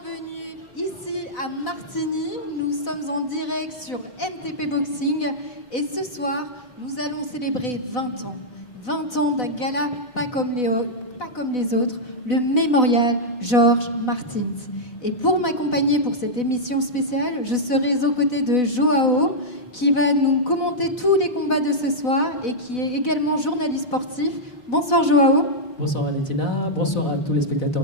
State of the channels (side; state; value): right; late; 4.0 ms